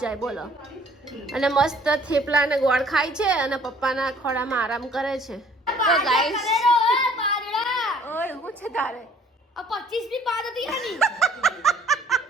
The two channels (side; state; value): both; normal; correlation 0.56